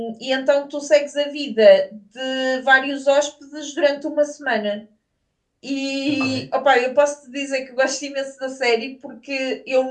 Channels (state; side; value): identical; both; correlation 1.00